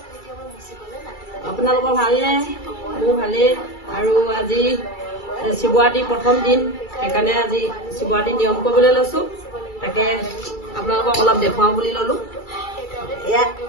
আপোনালোকৰ ভালনে? মোৰ ভালেই আৰু আজি শিৱৰাত্ৰি প্ৰথম দিন সেইকাৰণে আজি শিৱৰাত্ৰি নিয়ম কৰিবলৈ লৈছো তাকে আপোনালোকক অলপ দেখুৱাও বুলি ললো এয়া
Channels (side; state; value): right; late; 2.3 ms